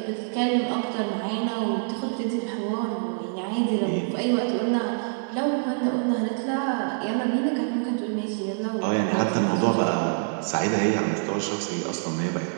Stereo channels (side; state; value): left; silent; digital silence